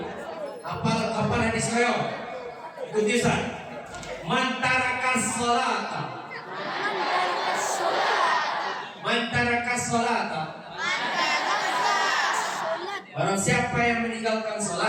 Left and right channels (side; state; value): both; identical; correlation 1.00